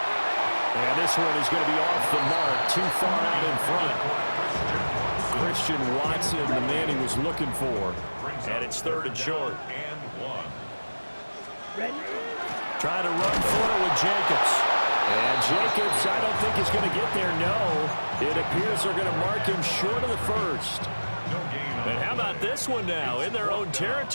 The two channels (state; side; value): inverted; both; correlation -1.00